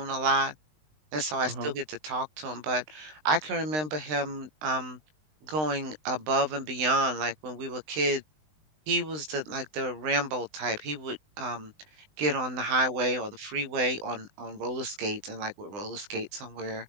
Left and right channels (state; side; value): late; left; 20 ms